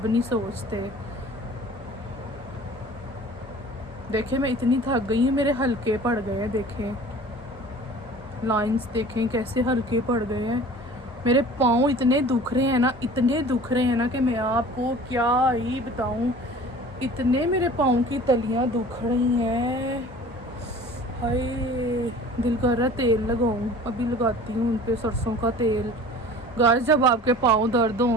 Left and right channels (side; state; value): both; normal; correlation 0.44